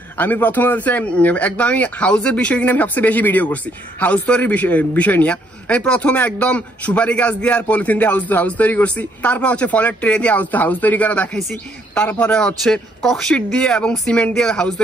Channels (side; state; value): both; normal; correlation 0.69